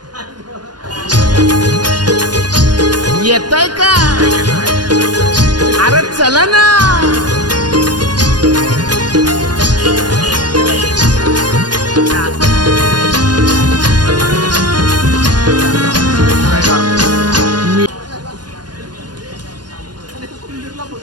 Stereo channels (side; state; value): left; late; 0.70 ms